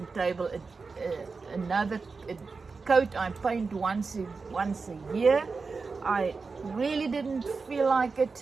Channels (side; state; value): left; quieter; 4.5 dB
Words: table another coat. I paint once a year. I really didn't feel like